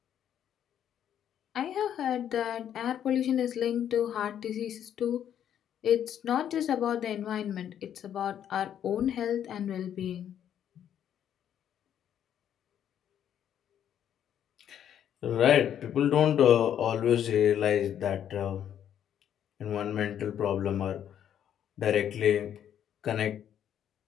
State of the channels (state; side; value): quieter; right; 9.8 dB